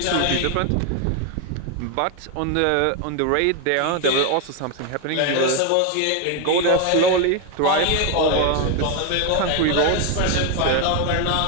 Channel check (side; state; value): both; different; correlation 0.01